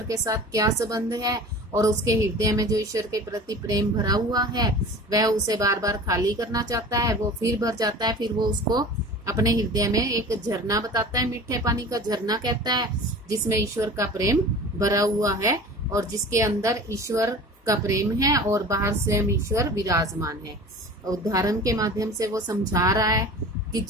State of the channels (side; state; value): both; normal; correlation 0.39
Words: के साथ क्या संबंध है, और उसके हृदय में जो ईश्वर के प्रति प्रेम भरा हुआ है वह उसे बार बार खाली करना चाहता है, वो फिर भर जाता है, फिर वो उसको अपने हृदय में एक झरना बताता है, मीठे पानी का झरना कहता है, जिसमें ईश्वर का प्रेम भरा हुआ है और जिसके अंदर ईश्वर का प्रेम है और बाहर स्वयं ईश्वर विराजमान है। उदाहरण के माध्यम से वो समझा रहा है कि